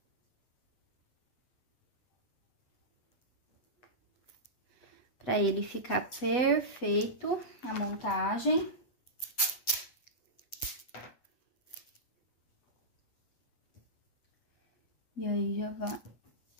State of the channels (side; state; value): right; late; 8.0 ms